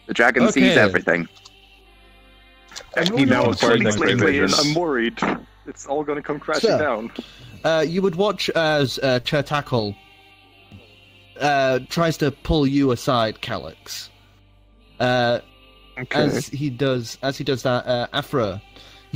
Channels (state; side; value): identical; both; correlation 1.00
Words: dragon sees Okay. everything. And he now acquired Next X-ray lately, and vision. I'm worried. It's all gonna come crashing So- down. You would watch as Chertakul tries to pull you aside, Calix. Okay. As he does that, Afra,